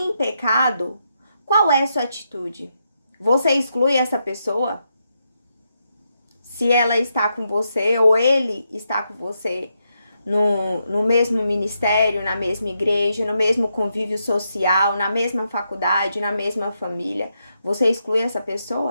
pecado, qual é a sua atitude? Você exclui essa pessoa? Se ela está com você ou ele está com você no mesmo ministério, na mesma igreja, no mesmo convívio social, na mesma faculdade, na mesma família, você exclui essa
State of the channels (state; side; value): inverted; both; correlation -0.82